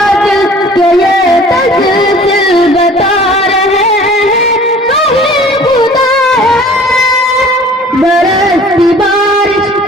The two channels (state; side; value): normal; both; correlation 0.48